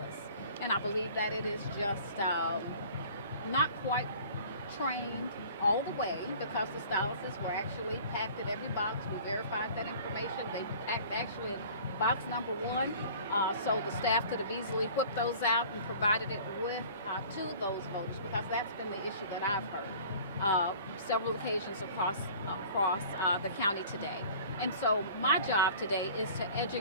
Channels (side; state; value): both; inverted; correlation -0.46